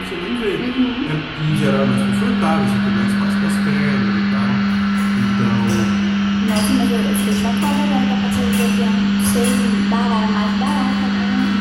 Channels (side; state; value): both; identical; correlation 1.00